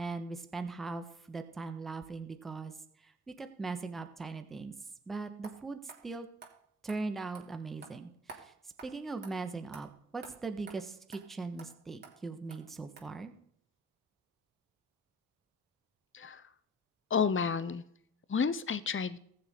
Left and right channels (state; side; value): normal; both; correlation 0.45